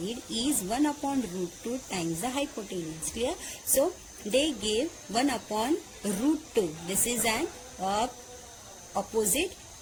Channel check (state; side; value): identical; both; correlation 1.00